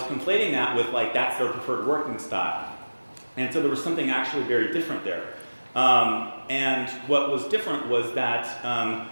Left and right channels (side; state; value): both; inverted; correlation -1.00